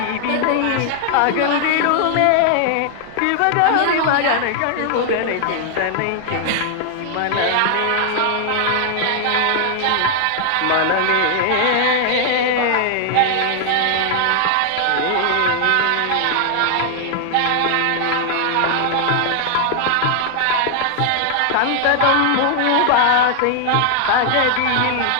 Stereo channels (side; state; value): both; different; correlation 0.00